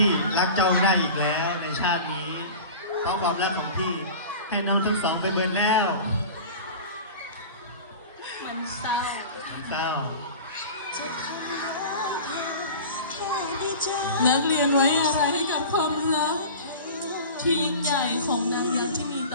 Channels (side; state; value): both; inverted; correlation -0.36